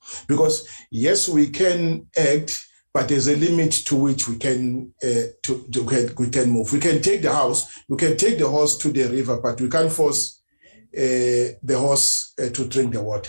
Because yes, we can act, but there's a limit to which we can we can move. We can take the house, we can take the horse to the river, but we can't force the horse to drink the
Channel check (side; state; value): both; inverted; correlation -1.00